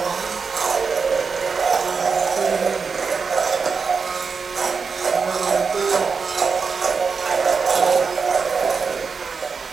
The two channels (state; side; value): quieter; left; 5.3 dB